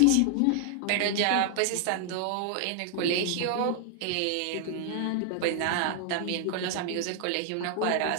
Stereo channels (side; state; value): both; different; correlation 0.00